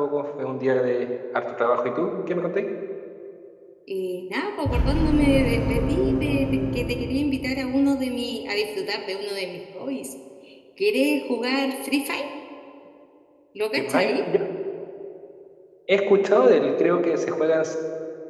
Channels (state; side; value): identical; both; correlation 1.00